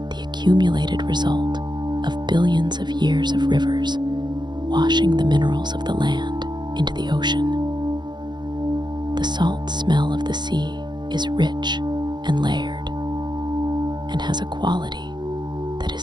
the accumulated result of billions of years of rivers washing the minerals of the land into the ocean. The salt smell of the sea is rich and layered, and has a quality that is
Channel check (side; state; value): left; late; 0.21 ms